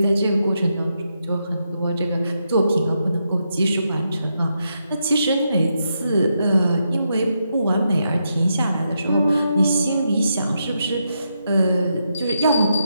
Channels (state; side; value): inverted; both; correlation -0.82